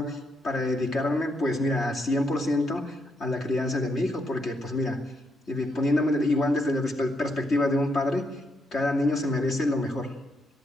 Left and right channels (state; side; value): normal; both; correlation 0.78